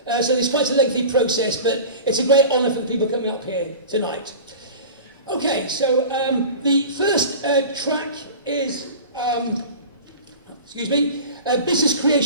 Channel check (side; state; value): both; inverted; correlation -0.35